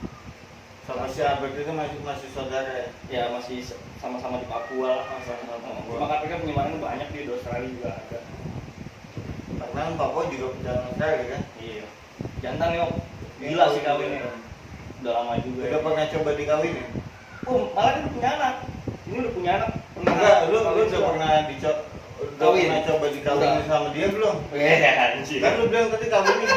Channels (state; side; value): identical; both; correlation 1.00